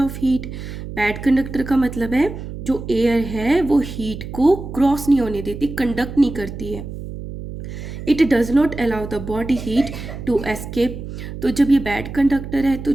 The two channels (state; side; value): noise; right; hum, 9 dB below the sound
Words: heat, bad conductor का मतलब है जो एयर है वो हीट को क्रॉस नहीं होने देती, कंडक्ट नहीं करती है। It does not allow the body heat to escape. तो जब ये बैड कंडक्टर है तो